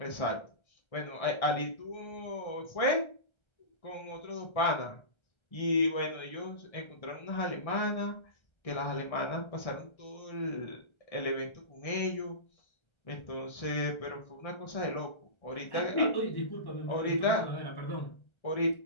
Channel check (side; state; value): right; late; 1.3 ms